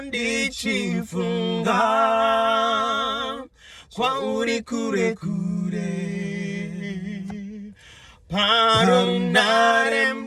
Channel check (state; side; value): identical; both; correlation 1.00